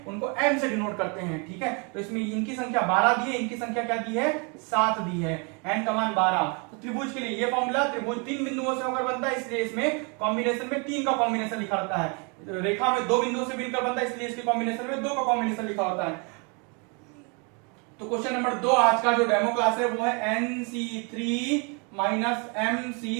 उनको m से डिनोट करते हैं। ठीक है, तो इसमें इनकी संख्या 12 दी है, इनकी संख्या क्या दी है, 7 दी है, n का मान 12। तो त्रिभुज के लिए ये फॉर्मूला, त्रिभुज 3 बिंदुओं से होकर बनता है, इसलिए इसमें कॉम्बिनेशन में 3 का कॉम्बिनेशन लिखा रहता है। रेखा में 2 बिंदुओं से मिलकर बनता है, इसलिए इसके कॉम्बिनेशन में 2 का कॉम्बिनेशन लिखा होता है। तो क्वेश्चन नंबर 2 आज का जो डेमो क्लास है वो है NC3 माइनस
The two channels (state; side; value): quieter; left; 33.9 dB